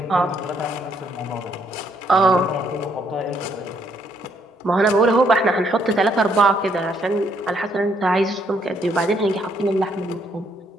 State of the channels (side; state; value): both; normal; correlation 0.70